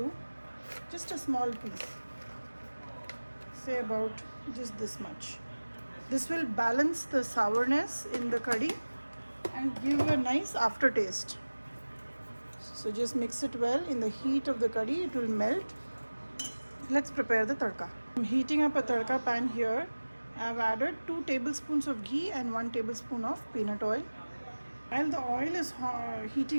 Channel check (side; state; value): both; inverted; correlation -1.00